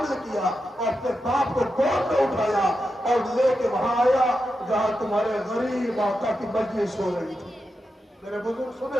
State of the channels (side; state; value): both; normal; correlation 0.88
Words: کیا اور اپنے باپ کو گود میں اٹھایا اور لے کے وہاں آیا جہاں تمہارے غریب آقا کی مجلس ہو رہی تھی. میرے بزرگ